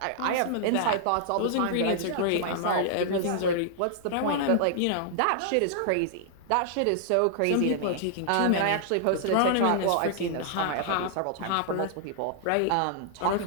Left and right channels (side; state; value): both; different; correlation -0.01